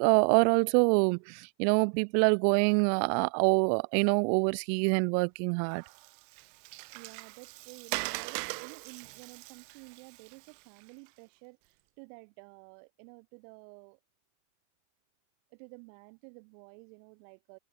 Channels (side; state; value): left; silent; 58 dB below the other